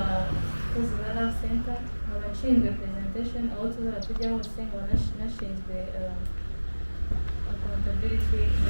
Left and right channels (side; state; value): both; inverted; correlation -1.00